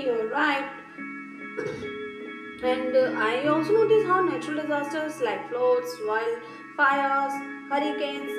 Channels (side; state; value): both; identical; correlation 1.00